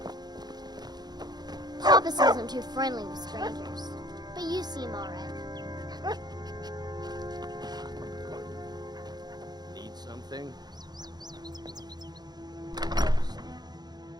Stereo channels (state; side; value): late; left; 0.20 ms